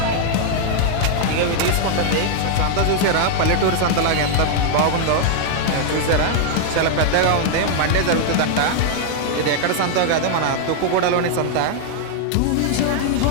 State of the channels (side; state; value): both; different; correlation 0.00